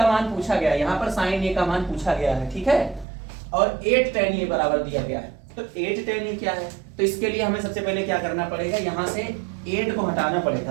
मान पूछा गया है, यहाँ पर साइन ए का मान पूछा गया है, ठीक है, और 8 tan a बराबर दिया गया है। तो 8 tan a क्या है, तो इसके लिए हमें सबसे पहले क्या करना पड़ेगा, यहाँ से 8 को हटाना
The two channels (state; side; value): drops out; left; at 3.1 s